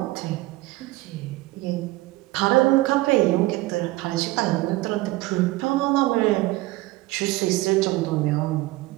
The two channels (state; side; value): quieter; left; 19.6 dB